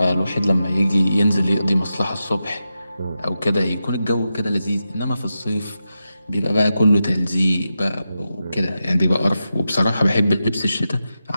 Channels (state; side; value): inverted; both; correlation -0.89